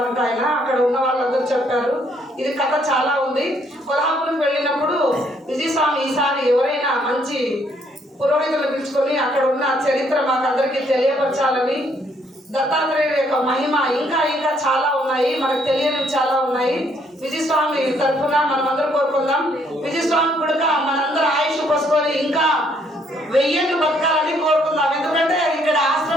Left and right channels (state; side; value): normal; both; correlation 0.68